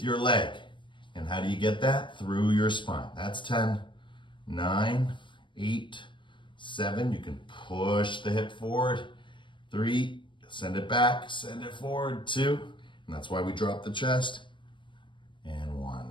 your leg. And how do you get that? Through your spine. That's 10, 9, 8, 7. You can push the hip forward. 3, send it back, send it forward. 2, and that's why we drop the chest. And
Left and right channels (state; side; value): late; right; 0.24 ms